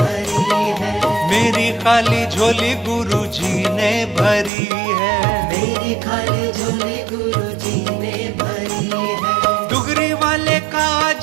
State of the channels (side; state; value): left; drops out; at 4.5 s